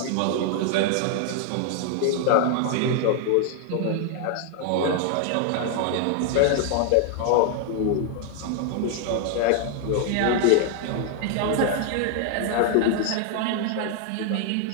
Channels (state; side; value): different; both; correlation 0.00